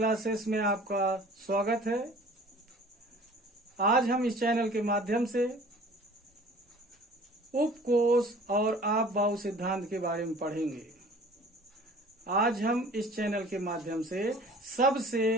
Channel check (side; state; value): both; normal; correlation 0.47